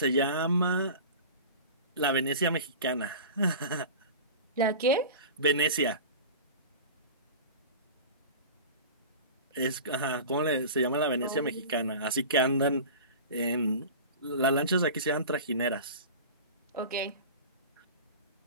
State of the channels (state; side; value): inverted; both; correlation -0.35